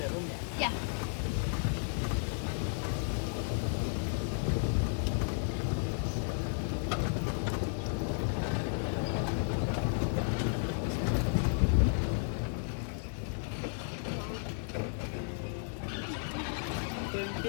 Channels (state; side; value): silent; right; 55 dB below the other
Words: room. Yeah. Yeah.